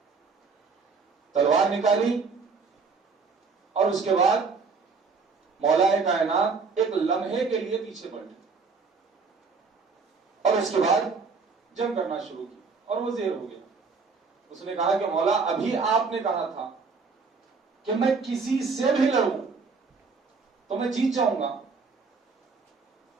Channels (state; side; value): quieter; left; 4.8 dB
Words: تلوار نکالی اور اس کے بعد مولا کائنات ایک لمحے کے لیے پیچھے پلٹے اور اس کے بعد جنگ کرنا شروع کی اور وہ زیر ہو گیا. اس نے کہا کہ مولا ابھی آپ نے کہا تھا کہ میں کسی سے بھی لڑوں تو میں جیت جاؤں گا،